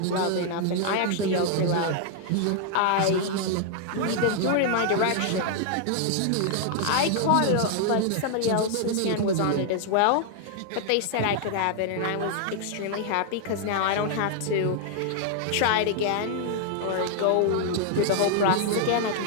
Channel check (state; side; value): different; both; correlation 0.00